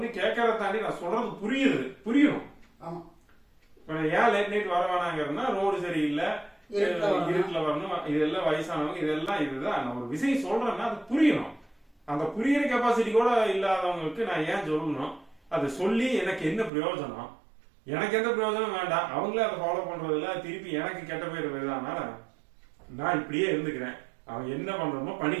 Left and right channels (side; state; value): left; drops out; at 16.7 s